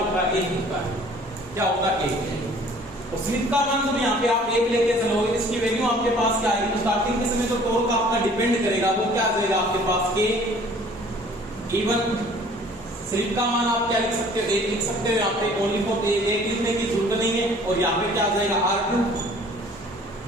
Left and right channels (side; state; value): both; normal; correlation 0.52